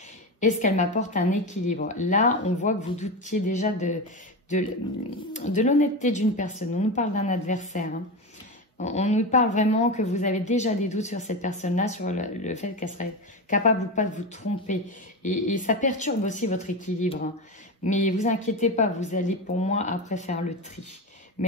Est-ce qu'elle m'apporte un équilibre? Là, on voit que vous doutiez déjà de l'honnêteté d'une personne. On nous parle d'un adversaire. Hein. On nous parle vraiment que vous avez déjà des doutes sur cette personne-là, sur le fait qu'elle serait capable ou pas de vous tromper. Et ça perturbe aussi votre équilibre. Hein. Mais vous inquiétez pas, vous allez pour moi après faire le tri.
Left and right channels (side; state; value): both; normal; correlation 0.20